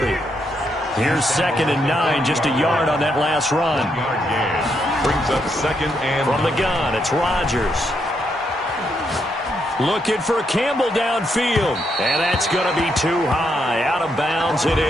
Here's 2nd and 9, just a yard on that last run. Brings up 2nd and from the gun, it's Rodgers. Looking for Campbell downfield. And that's going to be too high. Out of bounds and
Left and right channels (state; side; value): normal; both; correlation 0.78